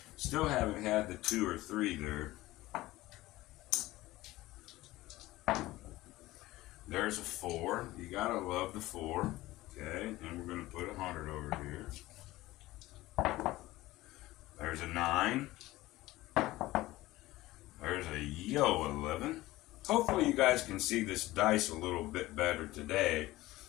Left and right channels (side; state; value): right; quieter; 17.8 dB